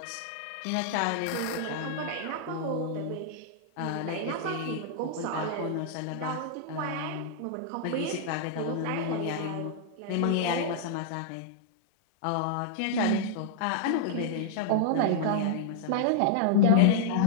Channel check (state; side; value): different; both; correlation -0.01